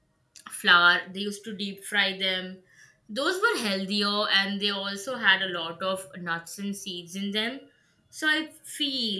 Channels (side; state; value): both; identical; correlation 1.00